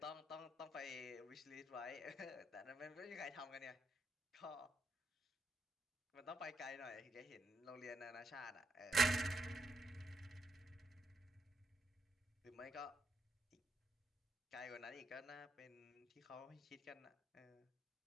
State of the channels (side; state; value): both; normal; correlation 0.81